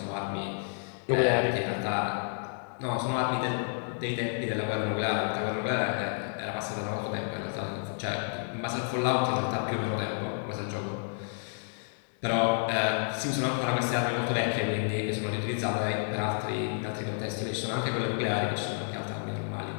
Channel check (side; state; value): right; silent; digital silence